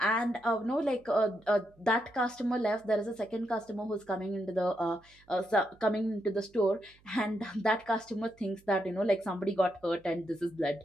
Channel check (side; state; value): right; noise; hum, 30 dB below the sound